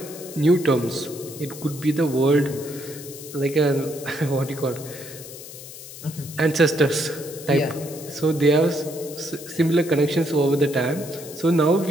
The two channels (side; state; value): left; noise; hiss, 14 dB below the sound